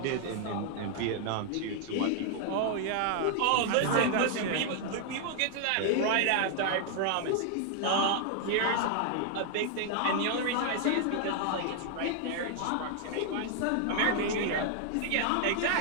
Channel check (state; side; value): different; both; correlation 0.00